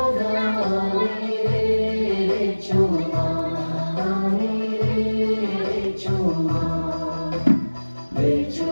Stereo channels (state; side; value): inverted; both; correlation -1.00